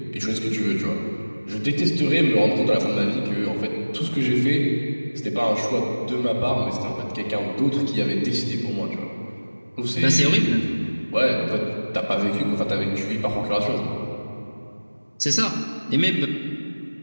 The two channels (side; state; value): both; inverted; correlation -1.00